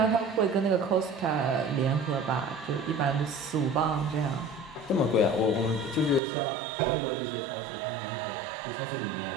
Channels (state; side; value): drops out; left; at 6.2 s